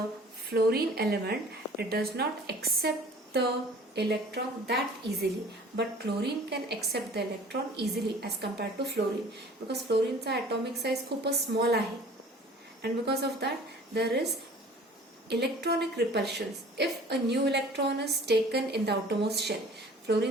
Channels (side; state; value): both; normal; correlation 0.47